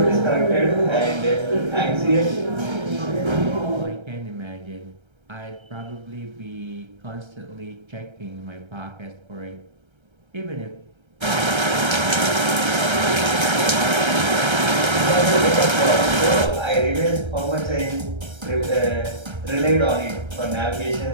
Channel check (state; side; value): late; left; 1.3 ms